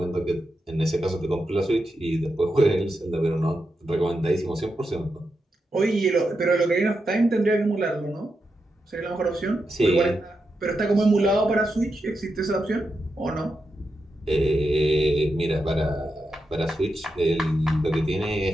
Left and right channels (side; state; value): both; normal; correlation 0.87